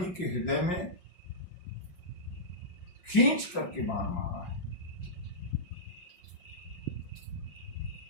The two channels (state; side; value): late; right; 5.5 ms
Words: के हृदय में खींच करके बाण मारा है।